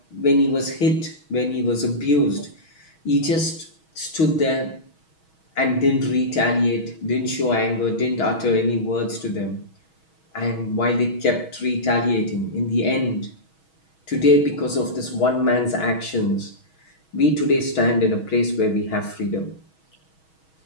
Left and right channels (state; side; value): late; right; 6.3 ms